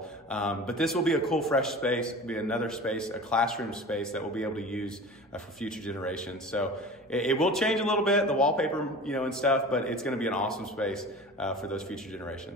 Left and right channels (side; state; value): both; normal; correlation 0.37